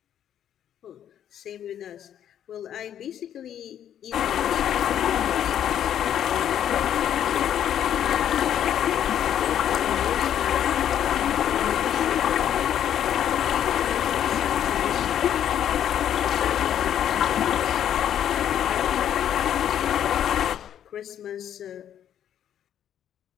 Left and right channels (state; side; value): quieter; right; 10.1 dB